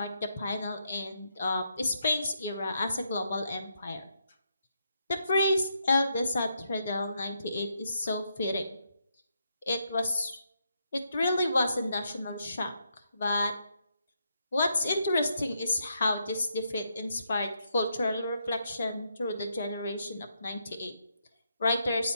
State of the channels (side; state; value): both; inverted; correlation -0.79